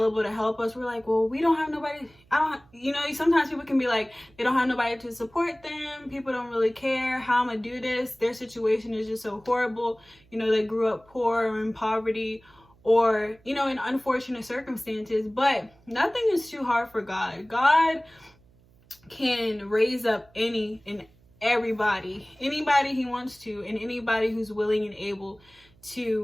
to help us. We're like, well, we don't have nobody. Sometimes people can be like, they don't have nobody to support them. People don't really care how I'm gonna do this. Their situation is just so horrible. They grew up poor or in poverty, or in unfortunate circumstances. But nothing is too hard for God. God can raise up any and everybody, anybody he wants to, and anybody who's willing and able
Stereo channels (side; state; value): right; noise; hum, 30 dB below the sound